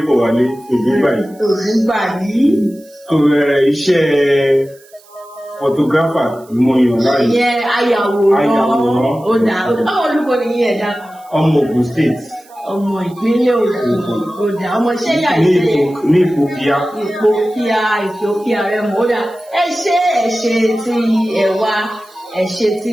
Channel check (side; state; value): right; noise; hiss, 28 dB below the sound